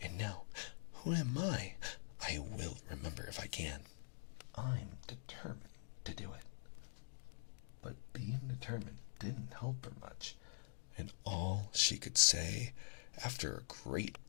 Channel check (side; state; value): right; silent; digital silence